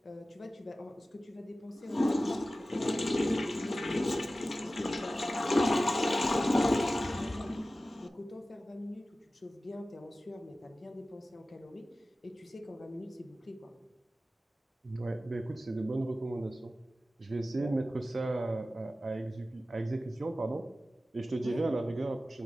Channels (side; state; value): both; normal; correlation 0.95